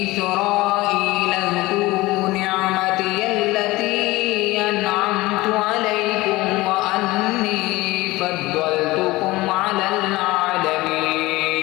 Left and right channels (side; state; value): right; quieter; 19.8 dB